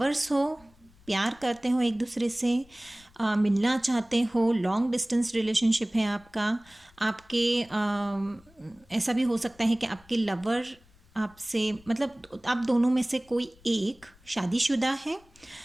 हो, प्यार करते हो एक दूसरे से, मिलना चाहते हो, लॉन्ग डिस्टेंस रिलेशनशिप है आपका। आपके ऐसा भी हो सकता है कि आपके लवर आपसे, मतलब आप दोनों में से कोई एक शादीशुदा है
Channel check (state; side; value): noise; left; rumble, 28 dB below the sound